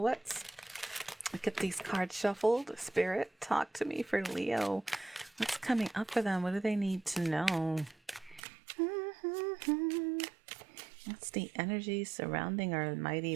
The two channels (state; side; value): drops out; left; at 8.4 s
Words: get these cards shuffled. Spirit, talk to me for Leo. What's coming up for them? What do they need to know? What's the energy surrounding our mighty